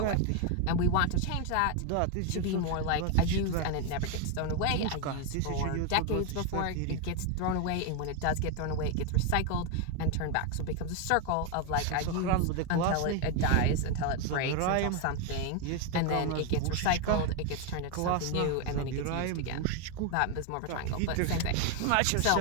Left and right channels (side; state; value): both; different; correlation 0.01